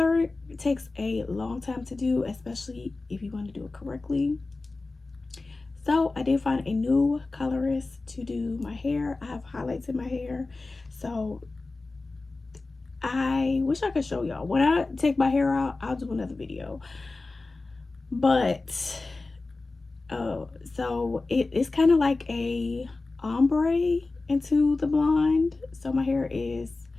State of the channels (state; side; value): quieter; right; 3.4 dB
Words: takes a long time to do, especially if you want to do it correctly. So I did find a new colorist to do my hair. I have highlights in my hair, so I wish I could show y'all. When I take my hair out, I'll do another video. But so it's kind of like a ombre into the blonde. So my hair is,